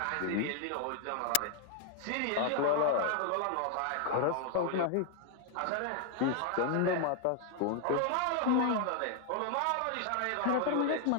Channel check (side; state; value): both; different; correlation 0.00